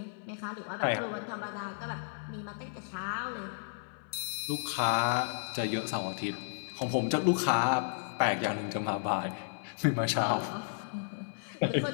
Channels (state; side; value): silent; right; 56 dB below the other